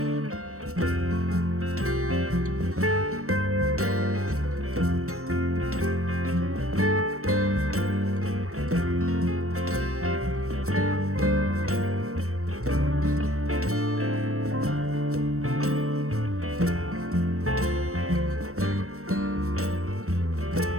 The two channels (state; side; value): late; left; 0.64 ms